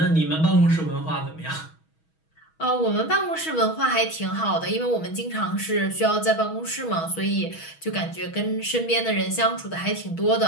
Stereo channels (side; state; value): right; late; 6.2 ms